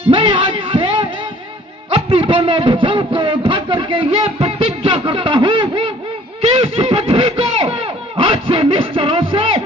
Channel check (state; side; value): normal; both; correlation 0.55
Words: मैं आज से अपनी दोनों भुजाओं को उठा करके ये प्रतिज्ञा करता हूँ कि इस पृथ्वी को आज से निश्चरों से